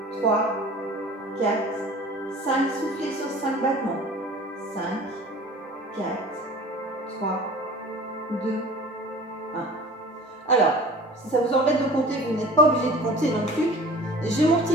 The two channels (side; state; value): both; normal; correlation 0.43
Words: 3, 4, 5. Soufflez sur 5 battements. 5, 4, 3, 2, 1. Alors, si ça vous embête de compter, vous n'êtes pas obligé de compter non plus. J'ai mon